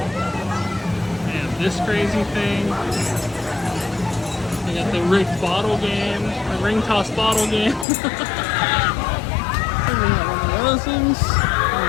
They have this crazy thing. They got the rigged bottle game, the ring toss bottle game. We got one of those things.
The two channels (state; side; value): drops out; right; at 7.9 s